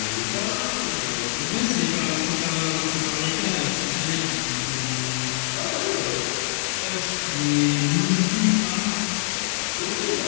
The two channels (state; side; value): silent; right; 62 dB below the other